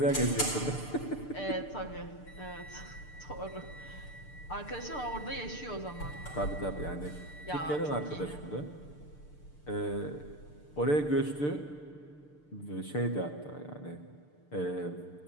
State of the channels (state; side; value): late; right; 6.7 ms